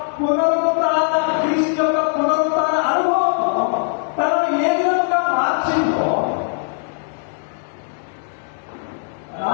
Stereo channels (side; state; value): right; silent; digital silence